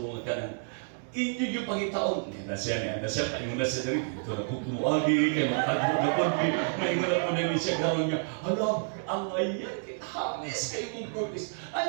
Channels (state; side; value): silent; left; digital silence